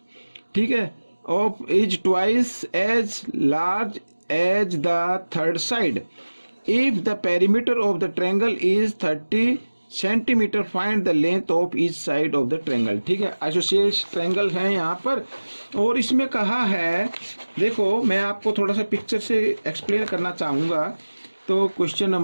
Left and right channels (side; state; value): both; inverted; correlation -1.00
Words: ठीक है, of is twice as large as the third side. If the perimeter of the triangle is 30 centimeter, find the length of each side of the triangle, ठीक है। Isosceles triangle है यहाँ पर और इसमें कहा है, देखो मैं आपको थोड़ा सा पिक्चर से एक्सप्लेन करना चाहूँगा, तो क्वेश्चन